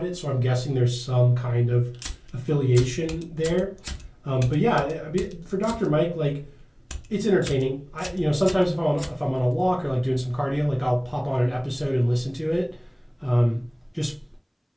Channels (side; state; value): both; identical; correlation 1.00